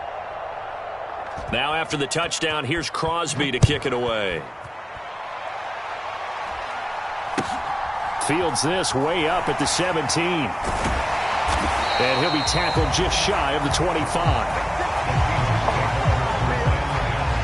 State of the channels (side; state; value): both; identical; correlation 1.00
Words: Now after the touchdown, here's Crosby to kick it away. Fields this way up at the 17. And he'll be tackled just shy of the 25.